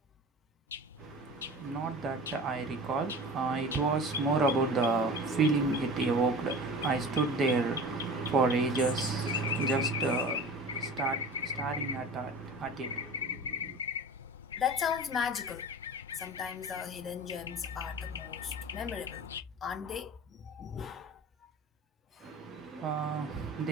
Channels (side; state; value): both; normal; correlation 0.36